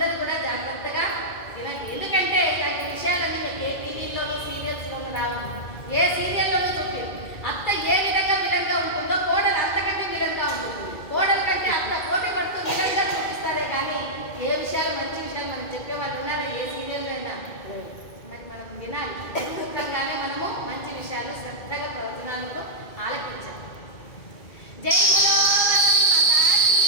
కూడా జాగ్రత్తగా వినండి. ఎందుకంటే ఇలాంటి విషయాలన్నీ మీకు ఏ టీవీలోనూ సీరియల్స్లోనూ రావు. ఏ సీరియల్లోనూ చూపి అత్త ఏ విధంగా ఉంటుందో కోడలు అంతకంటే విధంగా ఉంటుంది. కోడల కంటే అత్త పోటీ పడుతూ విధంగా చూపిస్తారే కానీ ఏ విషయాలు మంచి విషయాలు మనం చెప్పేవాళ్ళు ఉన్నారా ఏ సీరియల్లో అయినా? మరి మనం వినాలి, ముఖ్యంగానే మనము మంచి విషయాలు శ్రద్ధగా ప్రవచనాలను ఆలకించాలి. జై బలో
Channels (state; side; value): late; right; 2.2 ms